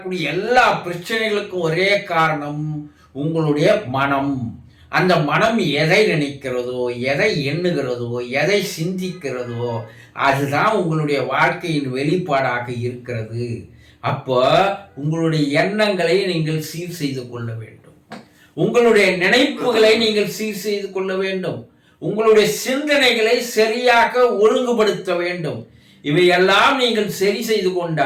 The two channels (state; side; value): identical; both; correlation 1.00